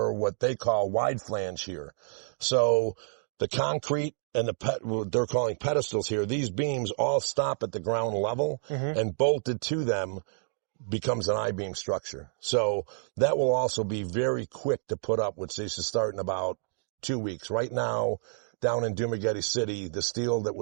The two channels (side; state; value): left; silent; digital silence